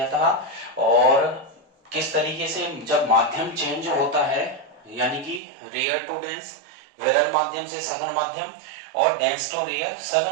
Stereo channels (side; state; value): left; drops out; at 5.4 s